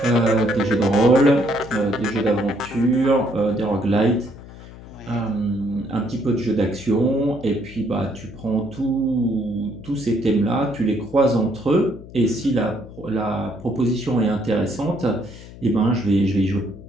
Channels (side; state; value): left; noise; hum, 17 dB below the sound